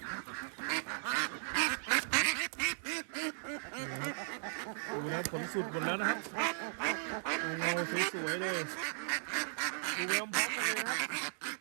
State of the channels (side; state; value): left; silent; digital silence